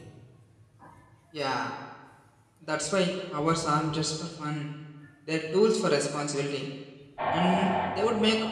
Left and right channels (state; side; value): identical; both; correlation 1.00